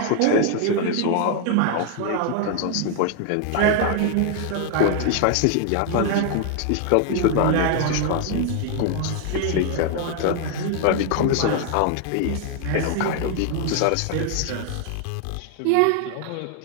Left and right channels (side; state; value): both; different; correlation 0.00